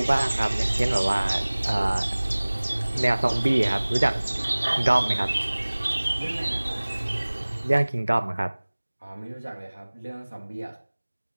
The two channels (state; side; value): inverted; both; correlation -1.00